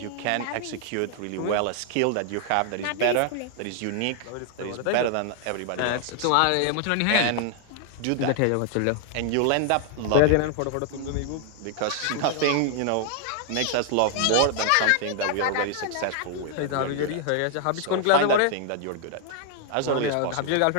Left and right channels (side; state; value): both; different; correlation 0.00